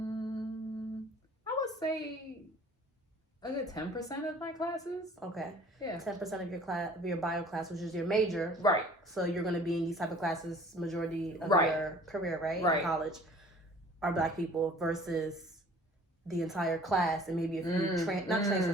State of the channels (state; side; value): normal; both; correlation 0.51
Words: I would say a good 10% of my classes. Okay. Yeah. 10% of your bio class, which is your major. Right. So you're going to be in these type of classes majority of your career, right? Right. In college, are black people versus the entire class, and maybe a few not transfer